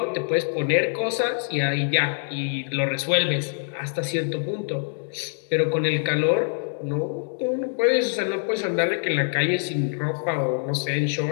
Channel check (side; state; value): right; silent; digital silence